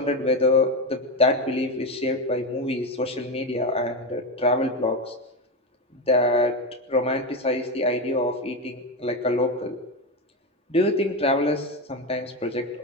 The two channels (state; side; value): normal; both; correlation 0.13